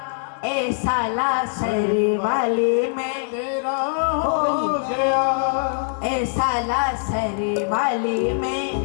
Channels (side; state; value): right; silent; 64 dB below the other